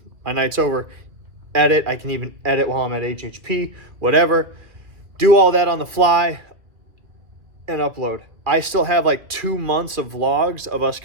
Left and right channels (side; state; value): left; late; 2.2 ms